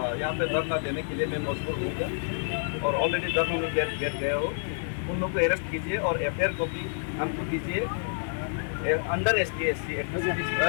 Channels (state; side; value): silent; right; digital silence